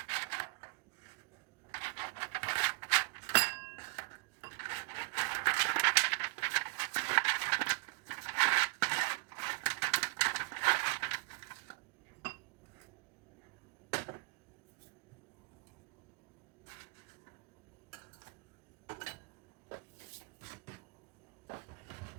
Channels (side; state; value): left; quieter; 29.5 dB